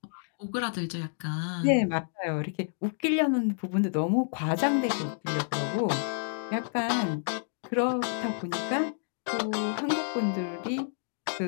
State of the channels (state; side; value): silent; right; digital silence